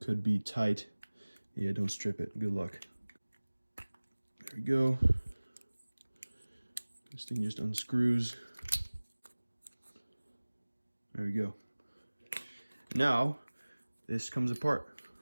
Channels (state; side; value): inverted; both; correlation -1.00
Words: Could be tight. Yeah, don't strip it. Good luck. There we go. This thing just unscrews. There we go. Now, this comes apart.